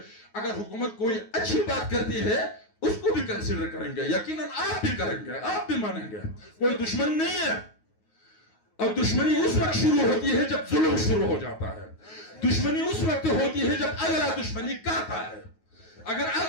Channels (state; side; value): late; right; 9.4 ms